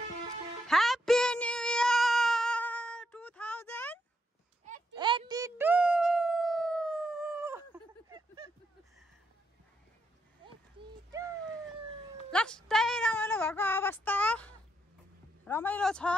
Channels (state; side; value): normal; both; correlation 0.79